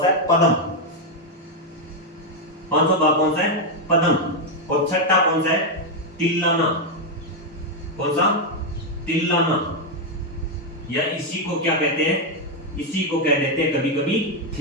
सा है, पदम। पांचवा भाग कौन सा है, पदम। और छठा कौन सा है, तिल्लाना। कौन सा, तिल्लाना, या इसी को क्या कहते हैं, इसी को कह देते हैं कभी कभी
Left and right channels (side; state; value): both; normal; correlation 0.02